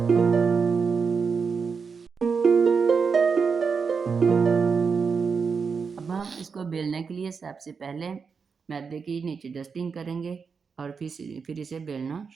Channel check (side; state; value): left; quieter; 5.6 dB